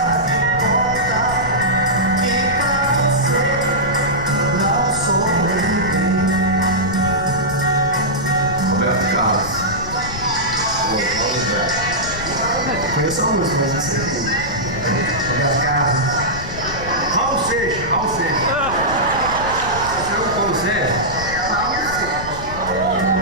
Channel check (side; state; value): left; noise; rumble, 10 dB below the sound